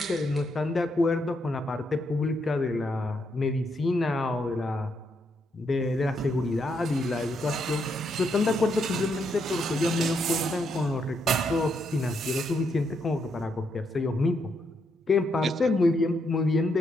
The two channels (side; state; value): both; normal; correlation 0.78